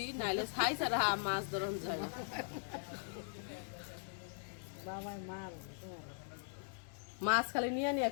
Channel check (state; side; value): silent; right; digital silence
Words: নাইলে ছাই ছাড়া মাছ ধরন যায় না। মাছ খালি নিয়ে নিয়ে